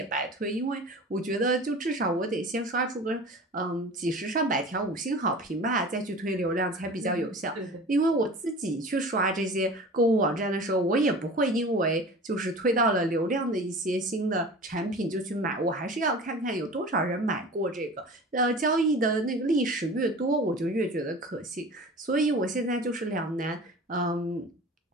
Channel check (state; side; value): normal; both; correlation 0.38